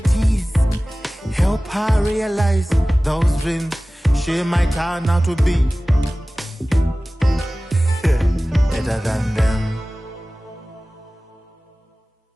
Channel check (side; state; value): both; normal; correlation 0.97